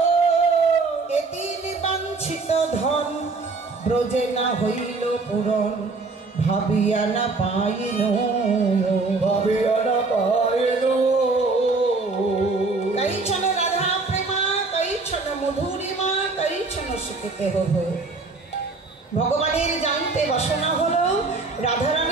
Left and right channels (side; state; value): left; quieter; 3.8 dB